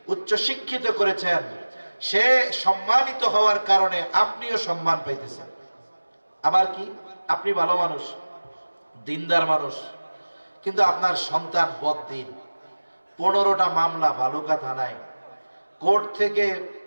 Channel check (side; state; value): both; inverted; correlation -1.00